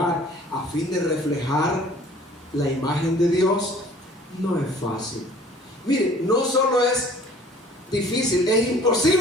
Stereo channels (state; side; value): normal; both; correlation 0.51